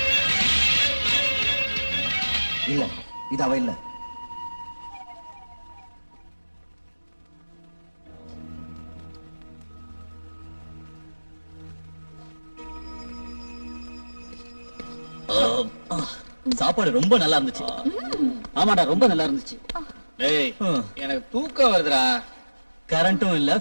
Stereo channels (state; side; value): inverted; both; correlation -1.00